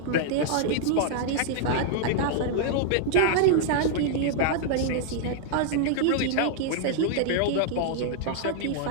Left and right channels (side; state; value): both; different; correlation -0.01